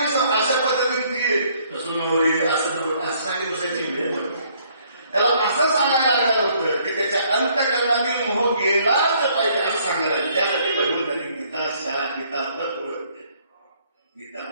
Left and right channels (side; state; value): both; inverted; correlation -0.64